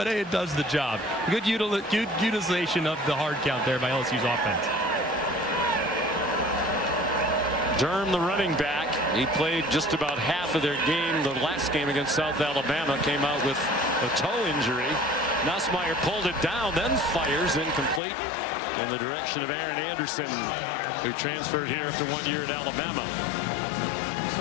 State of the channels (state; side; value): drops out; right; at 18.0 s